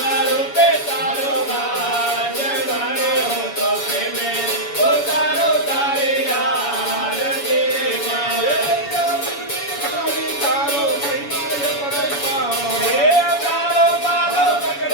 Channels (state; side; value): late; right; 7.1 ms